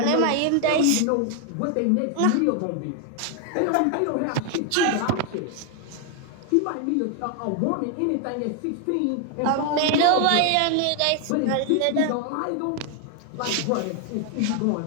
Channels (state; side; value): different; both; correlation 0.00